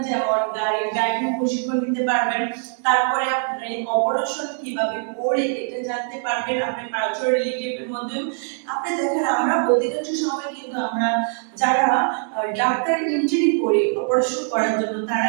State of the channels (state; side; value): silent; left; 59 dB below the other